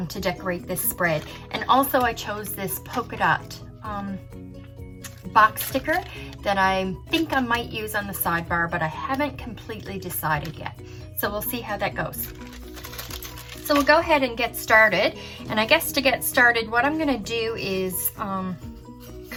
to decorate this spread. And also I chose this polka dot box sticker that I think I might use on the sidebar, but I haven't completely decided yet. So we'll see how that goes. So we'll go ahead and get started. And I guess to get started, what I'm gonna do is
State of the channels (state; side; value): identical; both; correlation 1.00